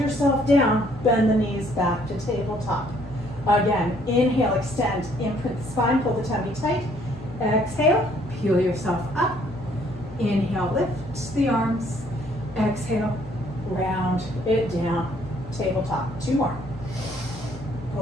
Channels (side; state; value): both; normal; correlation 0.64